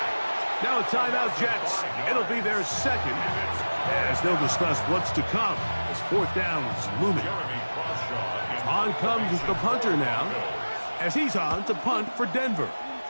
Now a timeout, Jets. It'll be their 2nd, as they'll discuss what's to come as 4th down is looming. On comes the punter now, as he's on to punt for Denver.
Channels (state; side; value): inverted; both; correlation -1.00